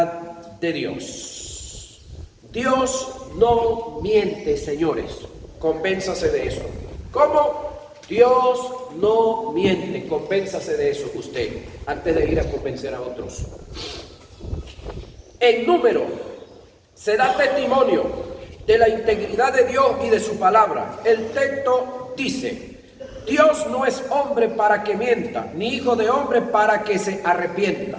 de Dios. Dios no miente, señores. Convénzase de eso. ¿Cómo? Dios no miente. Convénzase de eso usted, antes de ir a convencer a otros. En Número se da testimonio de la integridad de Dios y de su palabra. El texto dice: Dios no es hombre para que mienta, ni hijo de hombre para que se arrepienta.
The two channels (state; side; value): identical; both; correlation 1.00